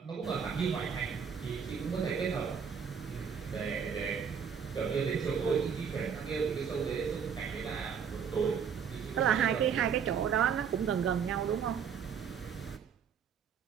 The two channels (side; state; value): left; quieter; 7.1 dB